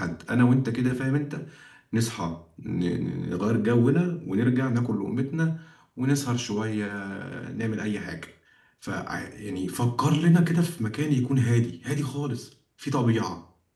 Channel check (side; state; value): both; identical; correlation 1.00